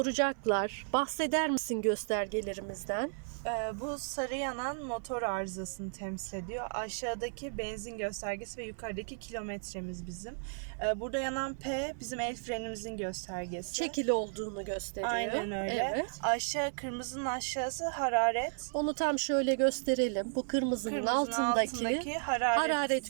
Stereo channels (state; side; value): silent; left; 55 dB below the other